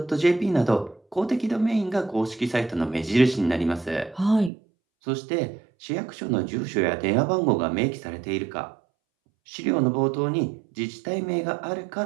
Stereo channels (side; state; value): left; drops out; at 4.5 s